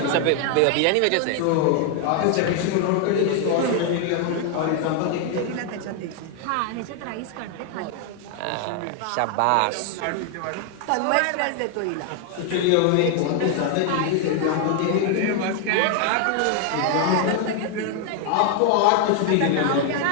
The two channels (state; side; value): different; both; correlation 0.00